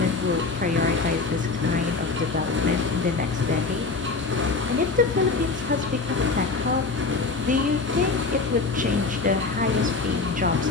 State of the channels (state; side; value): quieter; right; 4.1 dB